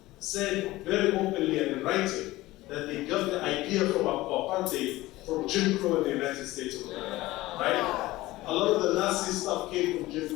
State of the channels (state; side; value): quieter; right; 18.2 dB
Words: said very openly and in writing that they got the idea from apartheid from Jim Crow in the United States of America, right? A lot of the Nazi stuff came from Jim